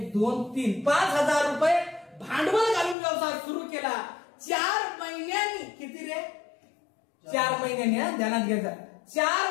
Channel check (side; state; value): right; drops out; at 3.0 s